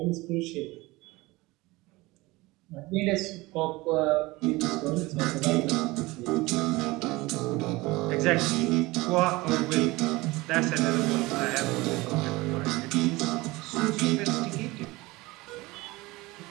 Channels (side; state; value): left; quieter; 21.3 dB